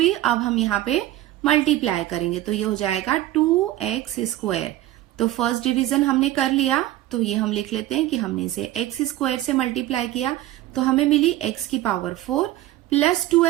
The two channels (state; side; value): quieter; left; 15.0 dB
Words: अब हम यहाँ पे मल्टीप्लाई करेंगे तो ये हो जाएगा 2x स्क्वायर। तो फर्स्ट डिवीजन हमने कर लिया, तो ये हम लिख लेते हैं कि हमने इसे x स्क्वायर से मल्टीप्लाई किया तो हमें मिली x की पावर 4 प्लस